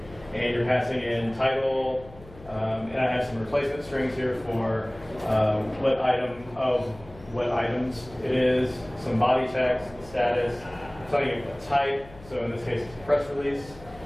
and you're passing in title, and I have some replacement strings here for what item of what items it is, some body text, status, telling it what type, so in this case it's a press release,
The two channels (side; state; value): left; noise; hum, 20 dB below the sound